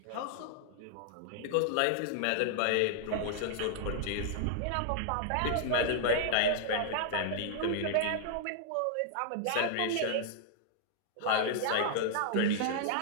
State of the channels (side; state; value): both; different; correlation -0.01